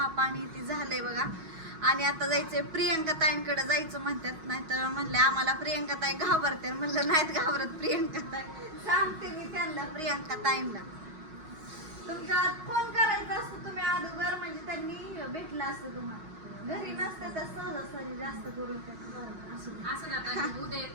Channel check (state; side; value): late; left; 6.3 ms